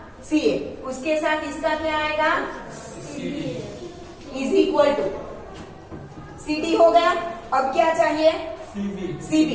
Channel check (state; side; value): identical; both; correlation 1.00